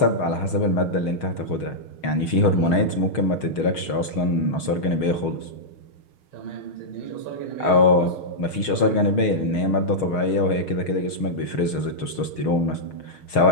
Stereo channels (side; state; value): right; late; 6.4 ms